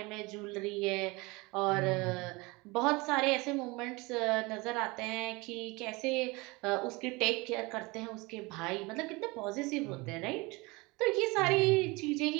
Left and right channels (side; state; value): left; quieter; 24.6 dB